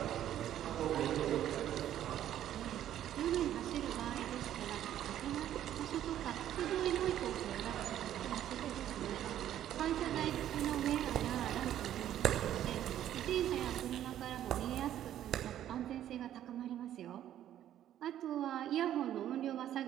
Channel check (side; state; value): left; quieter; 11.5 dB